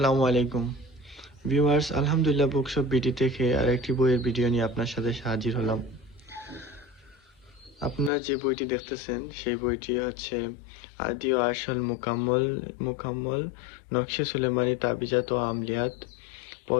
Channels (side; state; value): right; drops out; at 8.1 s